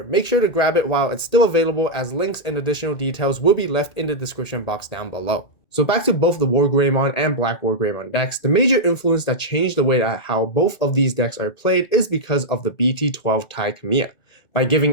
Make sure to grab it while it's still available, as links and additional details will be left in the description box down below. So back to both the WarGreymon and BlackWarGreymon decks, the major influence that changed the way that how both of these decks are played is because of the BT12 Kamiya. By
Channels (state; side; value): late; right; 1.8 ms